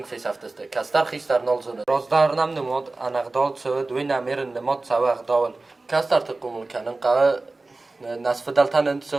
فیس افتسته کستر خیستر نالزونه رازدار نم نماد انقدال سوه دوی نمیرن نماد سوه اخداول کستر تقومون کنن قوه نصف دلتن انت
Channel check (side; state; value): left; quieter; 3.3 dB